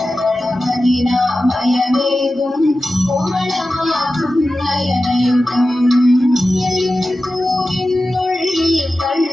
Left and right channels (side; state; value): both; normal; correlation 0.94